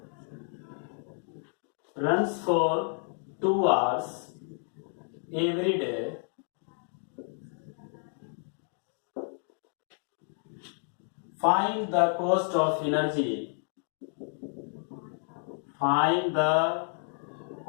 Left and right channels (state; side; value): silent; right; 57 dB below the other